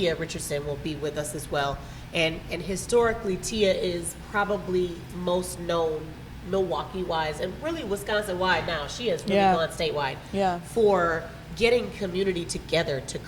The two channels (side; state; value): both; identical; correlation 1.00